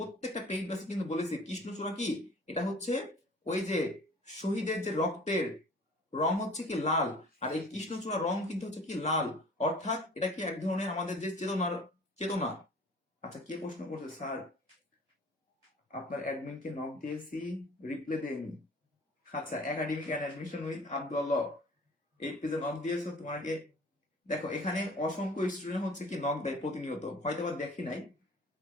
পেইড ব্যাচে কিন্তু বলেছি কৃষ্ণচূড়া কি, এটা হচ্ছে ওই যে শহীদের যে রক্তের রং হচ্ছে কি লাল, আর এই কৃষ্ণচূড়া রং কিন্তু হচ্ছে কি লাল, অর্থাৎ এটা কি এক ধরনের আমাদের যে চেতনার চেতনা। আচ্ছা, কে প্রশ্ন করছে স্যার, আপনার অ্যাডমিনকে নক দিয়েছি, রিপ্লাই দেয়নি। আচ্ছা, academic and admission with Abdullah, এই পেজে নক দিয়েছো তোমাকে। দেখো এখানে অসংখ্য স্টুডেন্ট হচ্ছে কি নক দেয় প্রতিনিয়ত, হয়তো বা দেখি নাই,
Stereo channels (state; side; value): normal; both; correlation 0.48